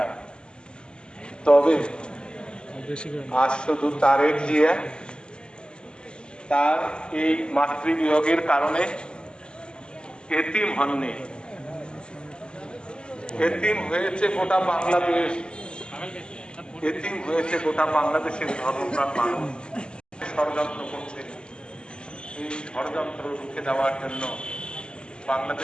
তবে আজ শুধু তারেক জিয়া তার এই মাতৃবিয়োগের কারণে এতিম হননি, এতিম হয়েছে গোটা বাংলাদেশ, এতিম হয়েছে গোটা বাংলাদেশের ধর্মপ্রাণ মানুষ। ষড়যন্ত্র করছে, এই ষড়যন্ত্র রুখে দেওয়ার জন্য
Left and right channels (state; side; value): late; right; 0.049 ms